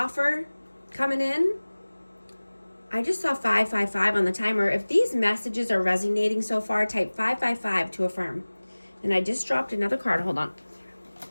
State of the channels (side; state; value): both; inverted; correlation -1.00